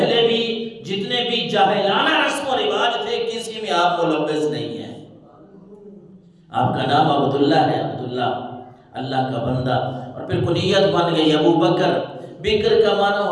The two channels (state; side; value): identical; both; correlation 1.00